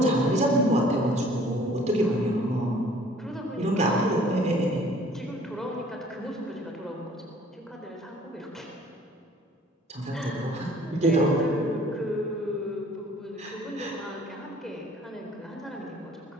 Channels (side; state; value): both; normal; correlation 0.54